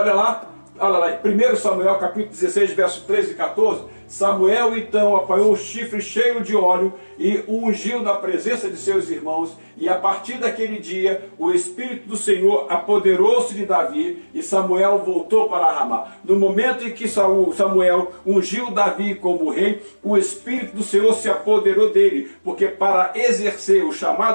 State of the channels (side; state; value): both; inverted; correlation -1.00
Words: lá, 1 Samuel capítulo 16, verso 13 e 14. Samuel então apanhou um chifre cheio de óleo e o ungiu na presença de seus irmãos, e a partir daquele dia o Espírito do Senhor apoderou-se de Davi, e Samuel voltou para Ramá. No momento em que Samuel ungiu Davi como rei, o Espírito do Senhor se apoderou dele, porque para exercer o